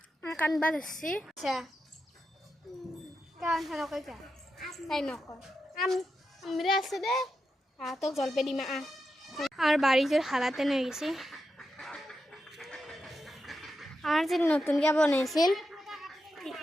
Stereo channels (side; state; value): both; normal; correlation 0.87